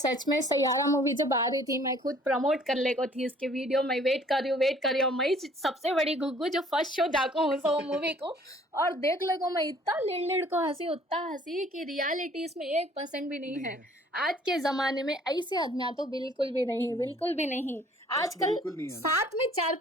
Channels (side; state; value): both; normal; correlation 0.57